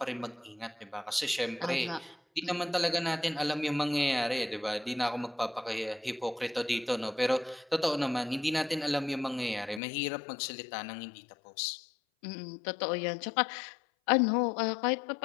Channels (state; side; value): drops out; right; at 9.8 s